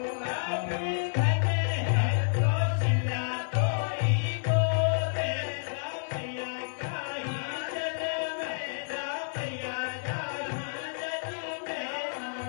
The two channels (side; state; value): right; silent; 58 dB below the other